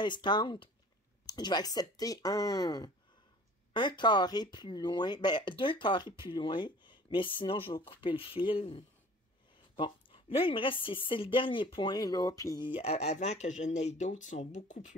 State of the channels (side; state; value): both; normal; correlation 0.47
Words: je vais accepter un carré plus loin, ben, 2 carrés plus loin, mais sinon, je vais couper le fil. Bon, là, il me reste, c'est le dernier point, là, puis avant que je n'aie d'autres, ils sont beaucoup